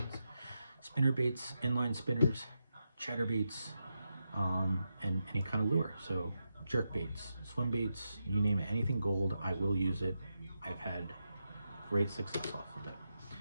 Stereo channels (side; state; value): both; inverted; correlation -0.87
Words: spinner baits, inline spinners, chatterbaits, and any kind of lure. So jerk baits, swim baits, you name it, anything gold, I will use it. I've had great success off of